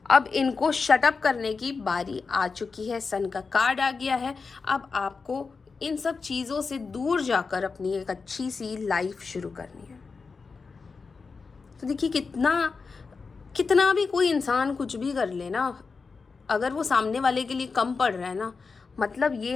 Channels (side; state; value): right; quieter; 4.7 dB